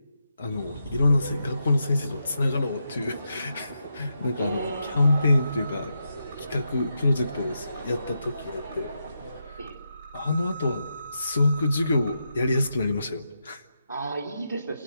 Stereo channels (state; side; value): inverted; both; correlation -0.85